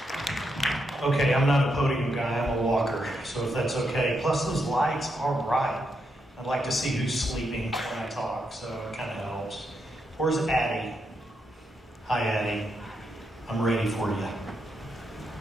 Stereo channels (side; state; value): both; normal; correlation 0.81